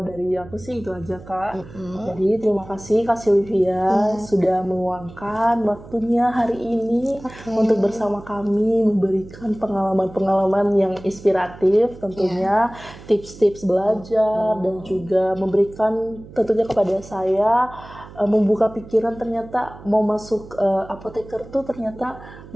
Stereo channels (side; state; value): right; noise; hum, 18 dB below the sound